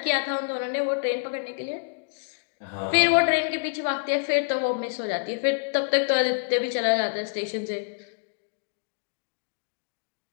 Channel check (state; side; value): quieter; right; 39.8 dB